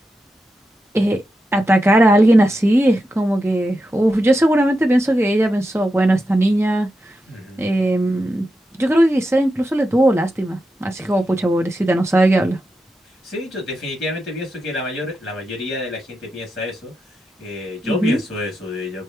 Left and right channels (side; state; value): both; normal; correlation 0.88